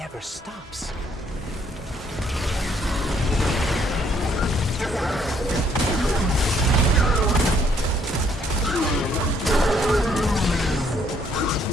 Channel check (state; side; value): normal; both; correlation 0.67